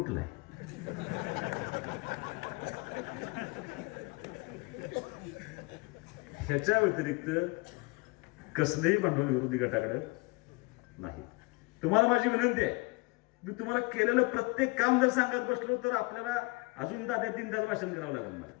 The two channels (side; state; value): right; quieter; 26.4 dB